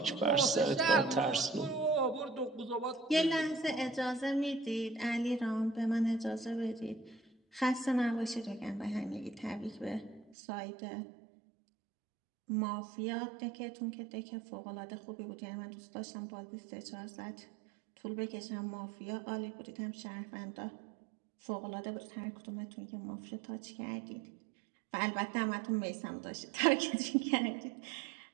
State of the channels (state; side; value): drops out; left; at 10.4 s